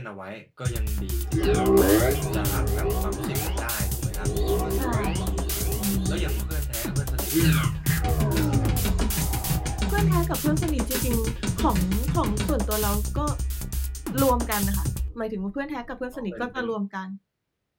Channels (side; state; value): both; identical; correlation 1.00